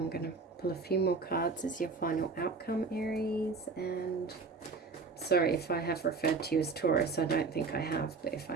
going to pull a few more cards as your final outcome, Aries. And sorry if I have referred to you as Taurus. I don't think I have, but if I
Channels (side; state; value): left; quieter; 4.3 dB